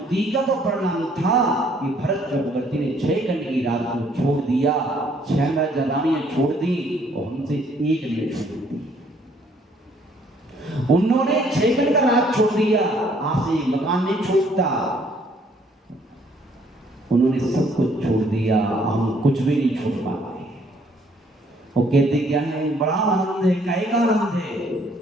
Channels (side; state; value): both; normal; correlation 0.64